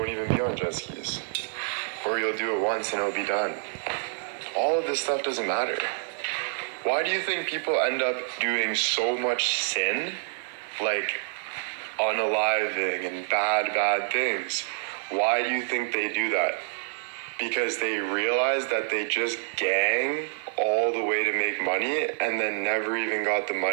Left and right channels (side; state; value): left; silent; digital silence